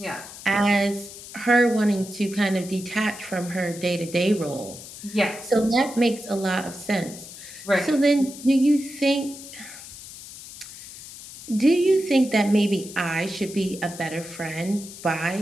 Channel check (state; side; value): noise; left; hiss, 15 dB below the sound